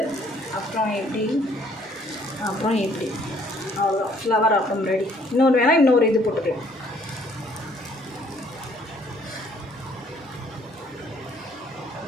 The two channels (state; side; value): normal; both; correlation 0.62